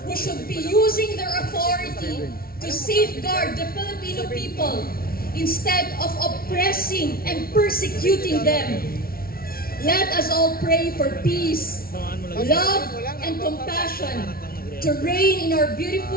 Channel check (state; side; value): late; right; 0.43 ms